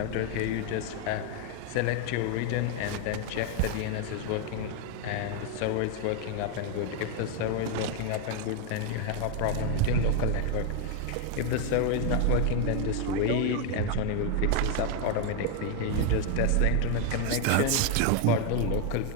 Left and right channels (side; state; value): both; different; correlation 0.01